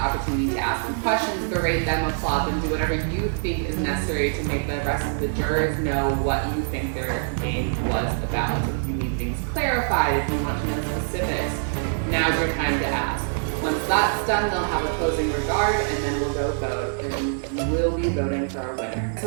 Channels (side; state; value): left; silent; digital silence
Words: opportunity to ask them questions, berate them, applaud them, do whatever you think is necessary to make the rest of the jurors know what you think their game was about. If you need things clarified, if you want to know specifics, now's your time to ask. Once that's done, they'll have a closing regard, and then we'll go vote, and we'll be voting for our winner. So